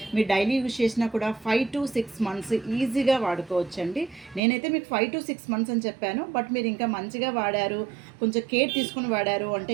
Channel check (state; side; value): drops out; left; at 4.4 s